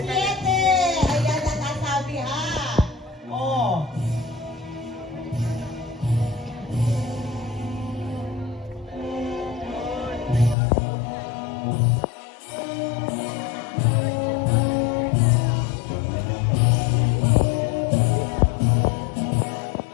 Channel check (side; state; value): right; drops out; at 10.6 s